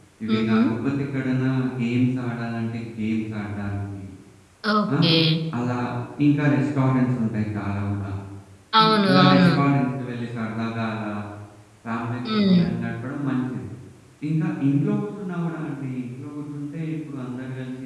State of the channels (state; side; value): identical; both; correlation 1.00